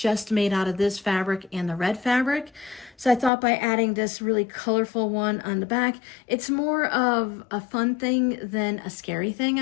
made out of this fabric and the red fabric. So I thought by adding this really colorful one on the back, it's more of a fun thing than a scary thing,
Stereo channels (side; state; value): right; drops out; at 3.3 s